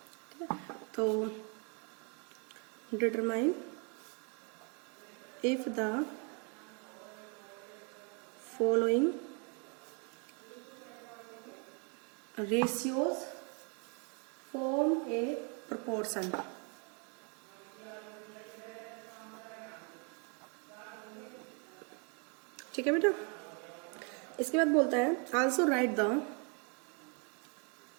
है, तो determine if the following ratios form a proportion। ठीक है बेटा, इसके बाद बोलता है also right the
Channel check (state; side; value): quieter; left; 36.4 dB